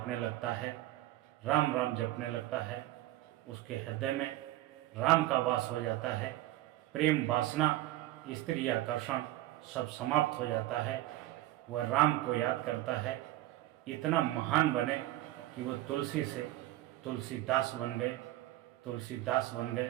लगता है, राम राम जपने लगता है। उसके हृदय में राम का वास हो जाता है। प्रेम वासना, स्त्री आकर्षण सब समाप्त हो जाता है। वह राम को याद करता है, इतना महान बने कि वो तुलसी से तुलसीदास बन गए, तुलसीदास बन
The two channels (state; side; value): quieter; left; 15.8 dB